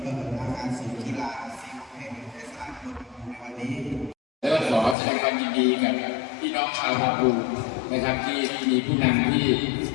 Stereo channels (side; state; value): right; drops out; at 5.0 s